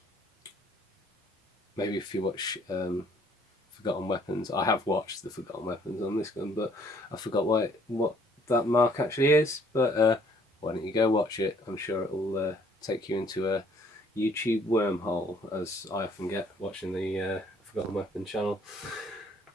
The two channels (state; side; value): normal; both; correlation 0.61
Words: Maybe if you watch Forgotten Weapons, I have watched the Forgotten Weapons on this gun, but I forgot what that mark actually is. But why don't you go watch it? I'm sure it will take you into a YouTube wormhole, as I often get watching the Forgotten Weapons channel.